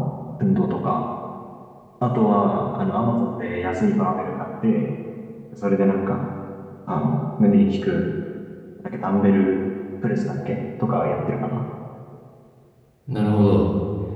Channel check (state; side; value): identical; both; correlation 1.00